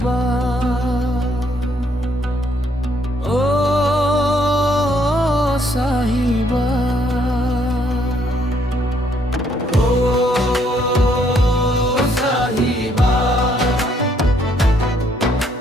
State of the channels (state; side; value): normal; both; correlation 0.69